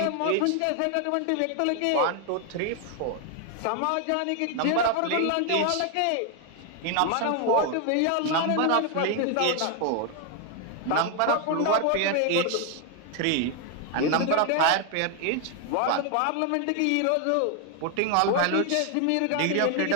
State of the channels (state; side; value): different; both; correlation 0.00